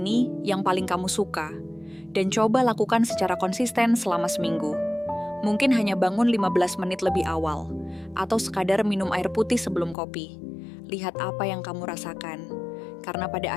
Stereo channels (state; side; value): drops out; right; at 10.0 s